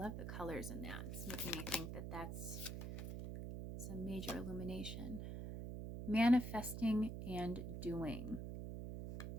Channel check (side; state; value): right; noise; hum, 5 dB below the sound